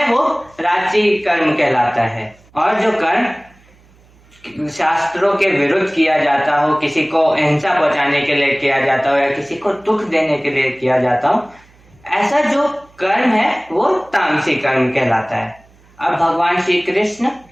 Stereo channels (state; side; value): noise; right; hum, 29 dB below the sound